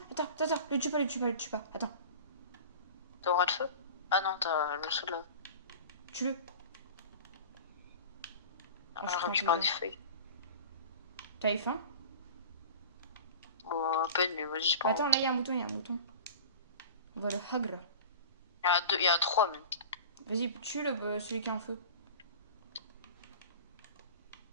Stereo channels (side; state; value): both; inverted; correlation -0.37